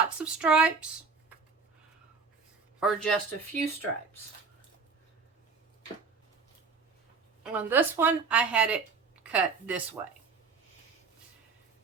of stripes or just a few stripes. On this one, I had it cut this way.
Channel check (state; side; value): quieter; left; 4.9 dB